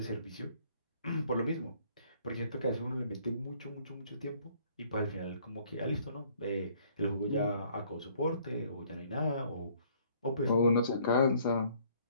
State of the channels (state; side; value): inverted; both; correlation -0.61